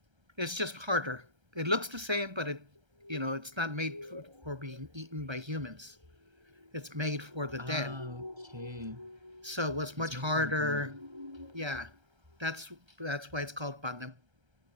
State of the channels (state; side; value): late; left; 1.3 ms